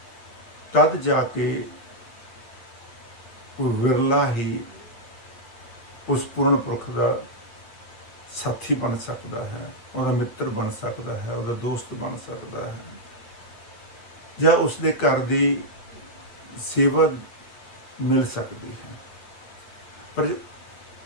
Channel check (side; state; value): right; late; 8.5 ms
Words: तद जाके विरला ही उस पूर्ण पुरख का साथी बन सकता है, उसका मित्र बन सकता है, उसका दोस्त बन सकता है, या उसके घर की सेवा मिल सकती है। पर